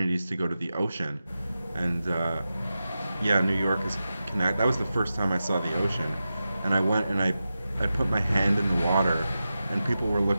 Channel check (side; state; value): both; inverted; correlation -0.92